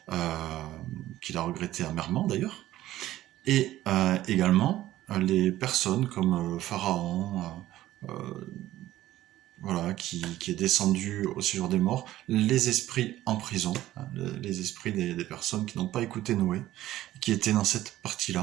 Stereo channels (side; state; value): left; quieter; 14.6 dB